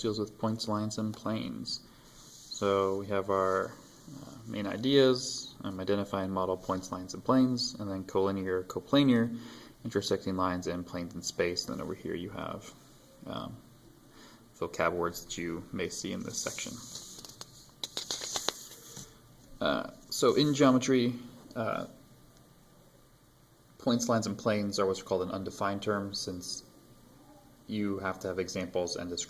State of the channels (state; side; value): identical; both; correlation 1.00